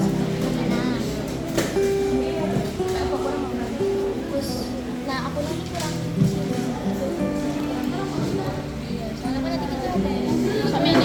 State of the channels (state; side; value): identical; both; correlation 1.00